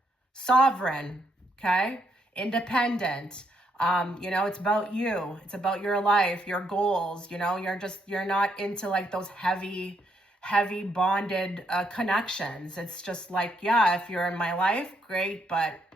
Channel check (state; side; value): normal; both; correlation 0.75